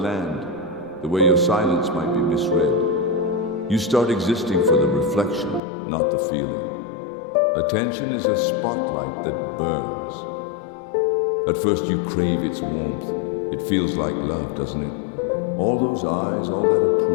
the way your silence might be misread. You start existing for the reflection, not the feeling. Attention is a spotlight that burns. At first you crave its warmth. It feels like love, doesn't it? All those eyes, all that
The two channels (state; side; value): drops out; right; at 5.6 s